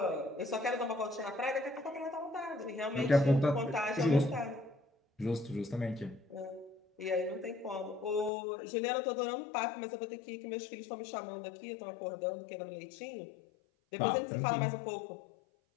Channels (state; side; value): drops out; right; at 8.3 s